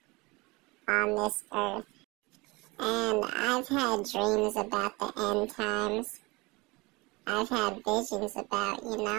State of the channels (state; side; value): quieter; left; 24.1 dB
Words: on this earth. And I've had dreams about the end times. I've had visions about,